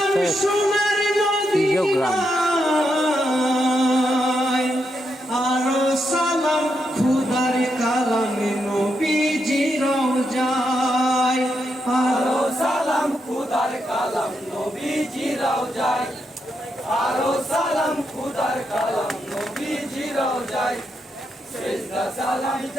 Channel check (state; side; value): normal; both; correlation 0.82